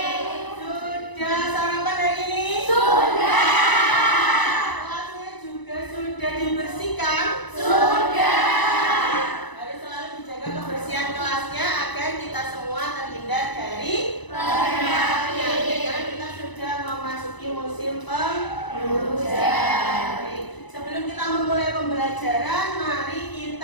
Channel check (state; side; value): late; right; 1.0 ms